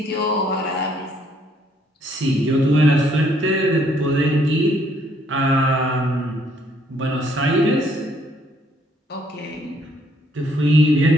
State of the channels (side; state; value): both; normal; correlation 0.67